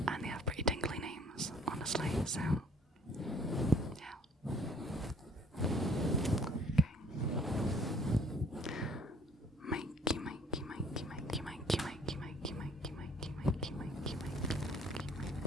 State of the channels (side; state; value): both; normal; correlation 0.57